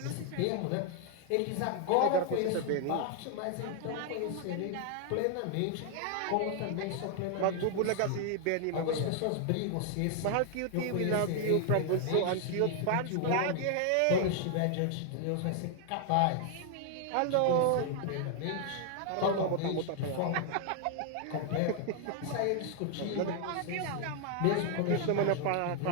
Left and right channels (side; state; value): both; different; correlation 0.00